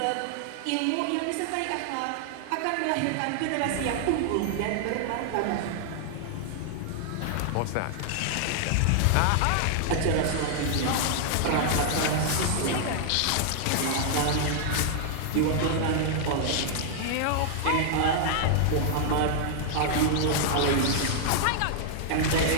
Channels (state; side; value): different; both; correlation -0.01